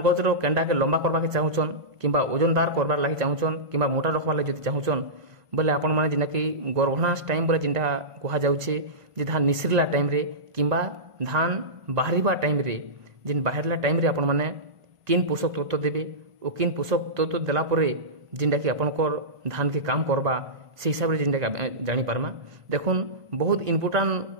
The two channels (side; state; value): left; late; 1.5 ms